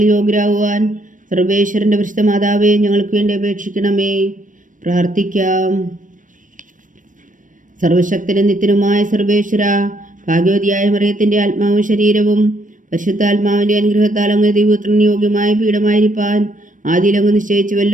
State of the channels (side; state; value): left; late; 0.38 ms